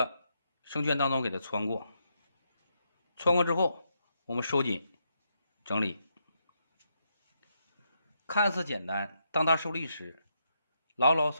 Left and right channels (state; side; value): inverted; both; correlation -0.81